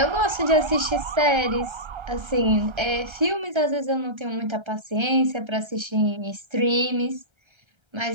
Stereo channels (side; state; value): left; late; 1.3 ms